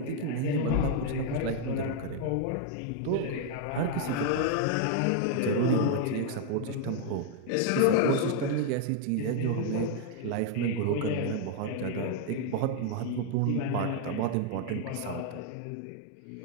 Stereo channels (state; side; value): different; both; correlation 0.00